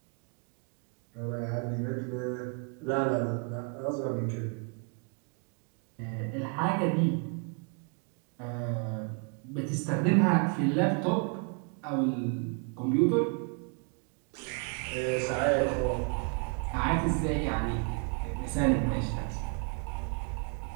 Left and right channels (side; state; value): left; quieter; 37.9 dB